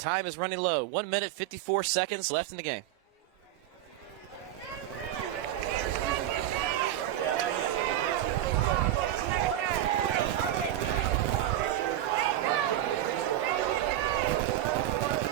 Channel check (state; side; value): quieter; left; 12.6 dB